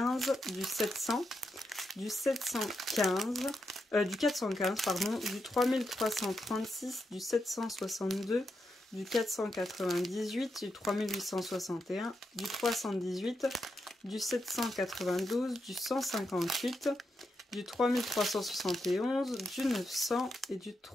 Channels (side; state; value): both; normal; correlation 0.84